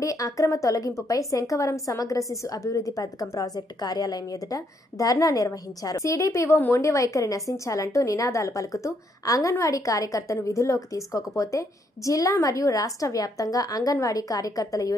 అక్రమ తొలగింపుపై శంఖవరం సమగ్ర శిశు అభివృద్ధి పథకం ప్రాజెక్టు కార్యాలయం ఎదుట ధర్నా నిర్వహించారు. సిడిపిఓ మొండి వైఖరి నశించాలంటూ నినాదాలు పలుకుతూ అంగన్వాడీ కార్యకర్తను విధుల్లోకి తీసుకోకపోతే జిల్లా మరియు రాష్ట్ర వ్యాప్తంగా అంగన్వాడీ కార్యకర్తల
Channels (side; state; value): both; normal; correlation 0.73